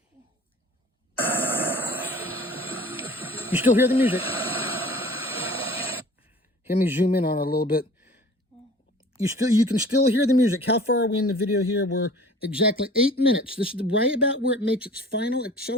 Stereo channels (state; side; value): normal; both; correlation 0.46